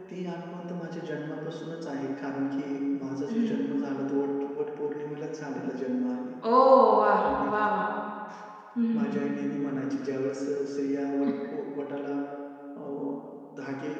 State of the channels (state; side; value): identical; both; correlation 1.00